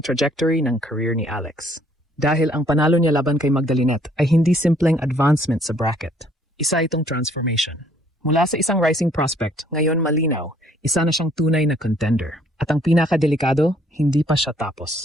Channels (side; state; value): both; normal; correlation 0.63